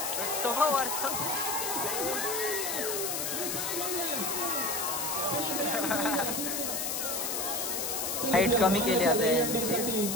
तो वर हाईट कमी केली आता यांची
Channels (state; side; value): noise; left; hiss, 1 dB below the sound